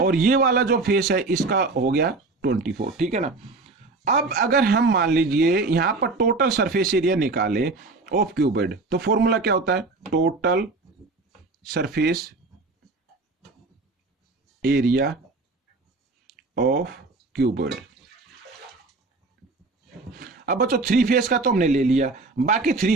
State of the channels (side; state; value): left; quieter; 3.6 dB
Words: और ये वाला जो फेस है इसका हो गया 24, ठीक है ना। अब अगर हम मान लीजिए यहां पर टोटल सरफेस एरिया निकाले ऑफ क्यूबॉइड, तो फॉर्मूला क्या होता है, total surface area of cuboid. अब बच्चों 3 फेस का तो हमने ले लिया, बाकी